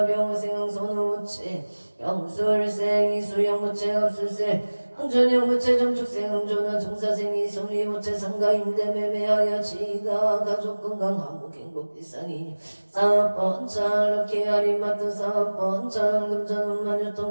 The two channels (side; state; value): both; inverted; correlation -1.00